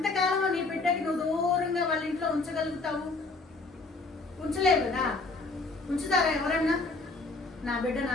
నీ బిడ్డకి నువ్వు దూరంగా వాళ్ళ ఇంట్లో ఉంచగలుగుతావు? ఉంచలేవు కదా. ఉంచుతారా ఎవరన్నా? నా బిడ్డ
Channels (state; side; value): quieter; right; 3.5 dB